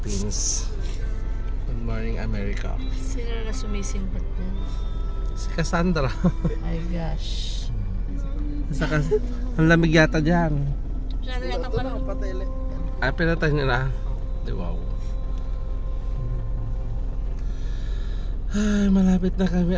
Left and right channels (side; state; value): both; identical; correlation 1.00